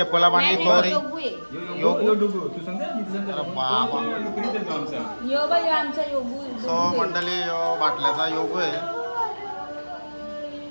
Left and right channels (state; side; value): inverted; both; correlation -1.00